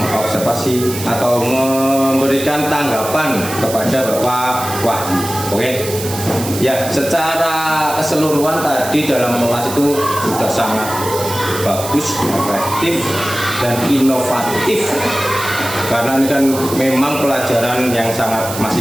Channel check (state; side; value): noise; right; hiss, 9 dB below the sound